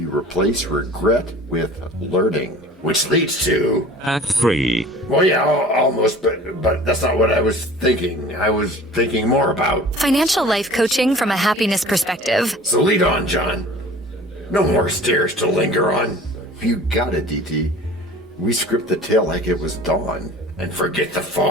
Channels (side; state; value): both; normal; correlation 0.43